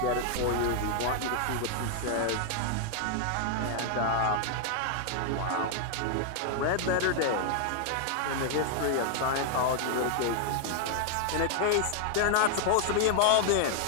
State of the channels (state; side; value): different; both; correlation 0.00